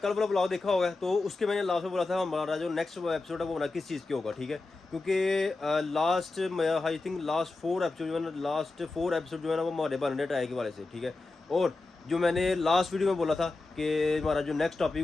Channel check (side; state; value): right; quieter; 3.4 dB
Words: वाला ब्लॉग देखा होगा तो उसके मैंने लास्ट में बोला था हमारा जो नेक्स्ट एपिसोड है वो हमारा किस चीज़ के होगा, ठीक है। क्योंकि last I think last 4 episode जो है ना जो है ना वो हमारे बन रहे टायर के वाले से, ठीक है। और जो मैंने लास्ट वीडियो में बोला था कि हमारा जो नेक्स्ट टॉपिक